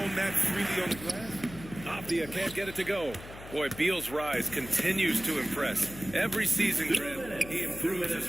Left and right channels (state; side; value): noise; left; hum, 15 dB below the sound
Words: that freely on the glass. Avdia can't get it to go. Boy, Beal's rise continues to impress. Every season, Grant, he improves as